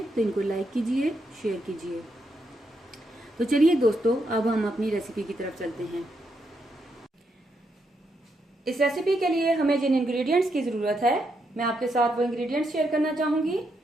तो इनको लाइक कीजिए, शेयर कीजिए। तो चलिए दोस्तों, अब हम अपनी रेसिपी की तरफ चलते हैं। इस रेसिपी के लिए हमें जिन इंग्रेडिएंट्स की ज़रूरत है, मैं आपके साथ वो इंग्रेडिएंट्स शेयर करना चाहूँगी।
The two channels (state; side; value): normal; both; correlation 0.80